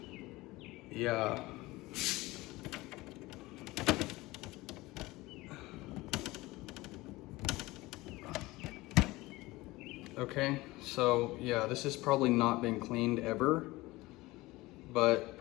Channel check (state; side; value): quieter; right; 20.2 dB